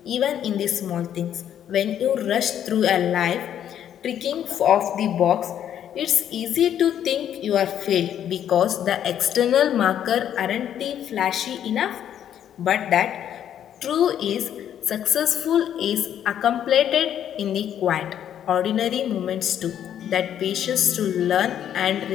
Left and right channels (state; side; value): quieter; right; 10.0 dB